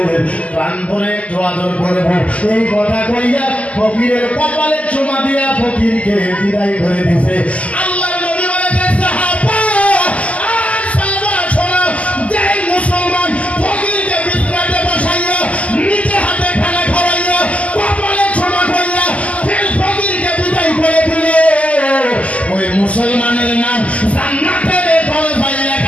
প্রাণ ভরে একটু আদর করবো। এই কথা কইয়া ফকিরের কপালে চুমা দিয়া ফকিরকে বিদায় করে দিছে। আল্লাহ নবী বলেছেন, সাহাবা আর সাহাবা শোনো, যেই মুসলমান ফকিরকে বিছানাতে বসাইয়া নিজে হাতে খানা খাওয়াইয়া কপালে চুমা কইয়া ফের ফকিরকে বিদায় করে দিলে, ওই মুসলমানের নাম জান্নাতের দরজায়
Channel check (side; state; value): right; late; 0.067 ms